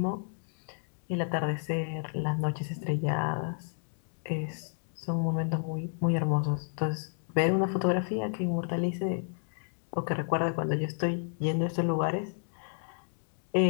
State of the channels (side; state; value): right; silent; digital silence